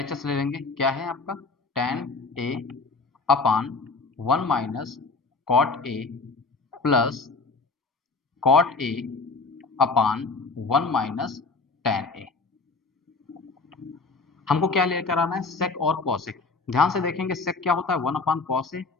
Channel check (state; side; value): quieter; right; 4.1 dB